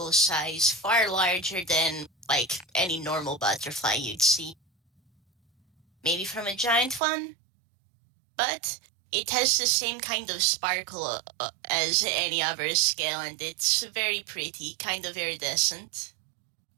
size, far larger than, like, any normal butterfly you'd see. Maybe from a giant one? But it has the same kind of sparkle as any other scale, and it's very pretty, kind of iridescent.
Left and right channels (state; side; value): drops out; left; at 7.0 s